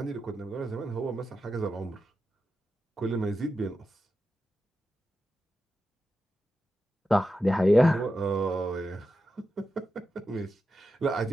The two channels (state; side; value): normal; both; correlation 0.90